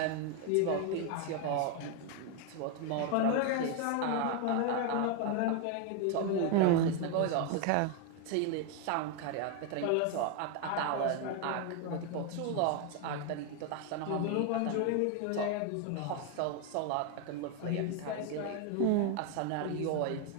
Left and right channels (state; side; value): different; both; correlation 0.01